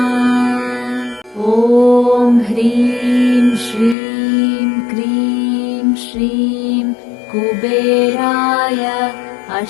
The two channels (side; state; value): right; drops out; at 4.0 s